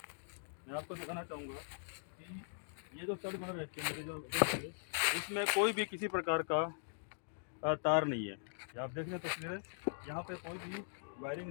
मैं आपको दिखाना चाहूँगा कि ये जो स्टड बना रहते हैं जो देखिए, इसमें कोई भी किसी प्रकार का तार नहीं है। ये आप देख रहे हैं तस्वीरें, यहाँ पे कोई भी वायरिंग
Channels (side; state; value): right; silent; digital silence